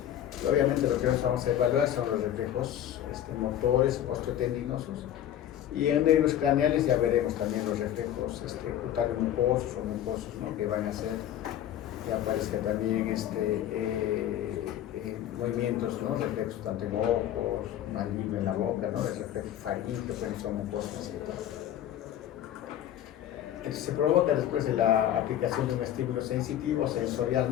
Y obviamente lo que nosotros vamos a evaluar son los reflejos motores, osteotendinosos, y en nervios craneales ya veremos también los reflejos cutáneo mucosos o mucosos, ¿no? Que van a hacer que aparezca también movimientos, ¿no? Reflejos tanto en ojos, maligno en la boca, ¿no? El reflejo faríngeo, que pueden ser mucosas y todo. Entonces se provoca después de la aplicación de un estímulo sensitivo, sensorial,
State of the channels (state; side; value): quieter; right; 11.4 dB